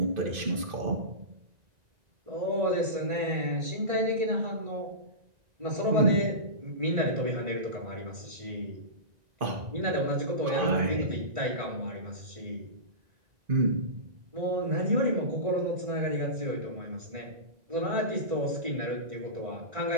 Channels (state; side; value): late; left; 2.5 ms